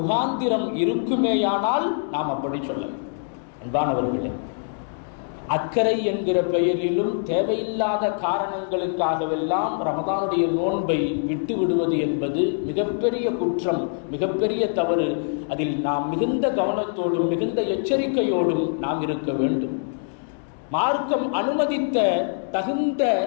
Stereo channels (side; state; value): right; silent; digital silence